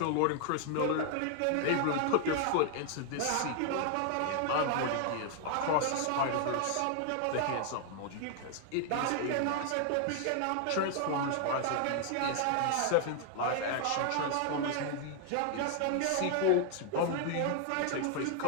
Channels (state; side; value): different; both; correlation 0.00